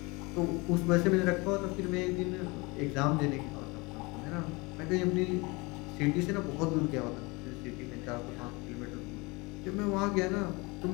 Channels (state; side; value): quieter; right; 25.9 dB